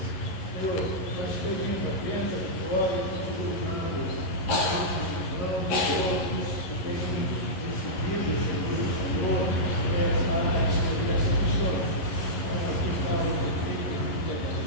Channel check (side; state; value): right; late; 11 ms